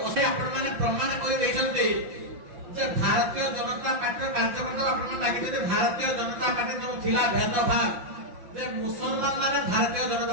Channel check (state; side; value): late; left; 5.7 ms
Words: ଆପଣମାନେ ପ୍ରମାଣ କରି ଦେଇଛନ୍ତି ଯେ ଭାରତୀୟ ଜନତା ପାର୍ଟିର କାର୍ଯ୍ୟକର୍ତ୍ତା ଆପଣମାନେ ଲାଗିଛନ୍ତି ଭାରତୀୟ ଜନତା ପାର୍ଟି ଯେଉଁ ଥିଲା ଭେଦଭାବ ଯେ ମୁସଲମାନ ମାନେ ଭାରତୀୟ